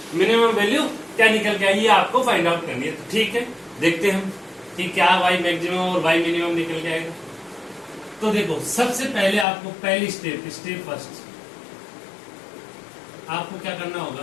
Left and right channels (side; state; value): right; drops out; at 9.5 s